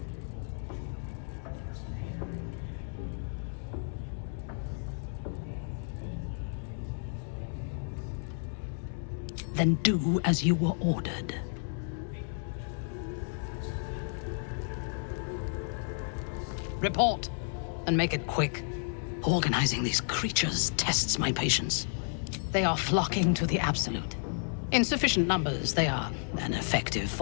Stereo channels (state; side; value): silent; right; 56 dB below the other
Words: Then do as you were ordered. Report, and make it quick. Organizing these creatures tests my patience. They are flocking to the Absolute. In sufficient numbers, they are an effective